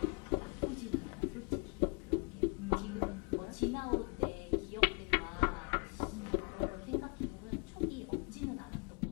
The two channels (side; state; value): right; quieter; 33.1 dB